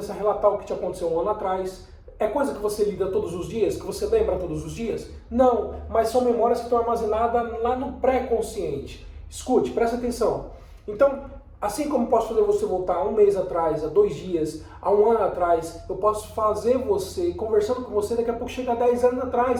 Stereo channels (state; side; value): identical; both; correlation 1.00